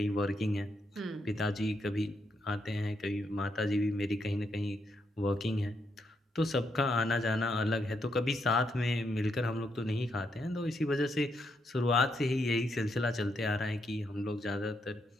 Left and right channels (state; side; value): normal; both; correlation 0.79